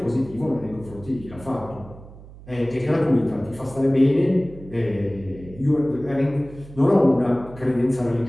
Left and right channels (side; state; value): right; noise; hum, 18 dB below the sound